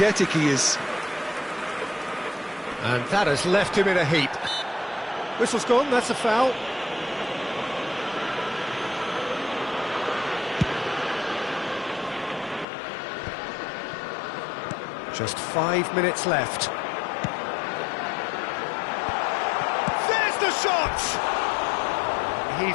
he is. And that has left him in a heap. Whistle's gone, that's a foul. Just 5 minutes left. There's the shot!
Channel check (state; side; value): drops out; right; at 12.7 s